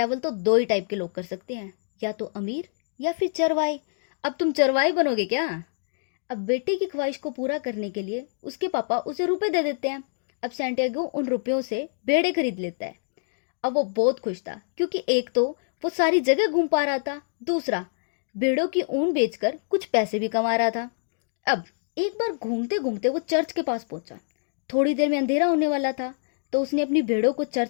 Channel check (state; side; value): silent; right; digital silence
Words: तो दो ही टाइप के लोग कर सकते हैं, या तो अमीर या फिर चरवाहे। अब तुम चरवाहे बनोगे क्या? अब बेटे की ख्वाहिश को पूरा करने के लिए उसके पापा उसे रुपए दे देते हैं। अब सैंटियागो उन रुपयों से भेड़े खरीद लेता है। अब वो बहुत खुश था, क्योंकि एक तो वो सारी जगह घूम पा रहा था, दूसरा भेड़ों की ऊन बेचकर कुछ पैसे भी कमा रहा था। अब एक बार घूमते घूमते वो चर्च के पास पहुंचा। थोड़ी देर में अंधेरा होने वाला था, तो उसने अपनी भेड़ों को